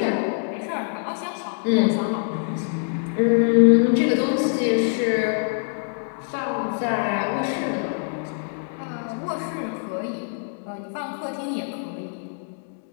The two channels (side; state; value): right; silent; digital silence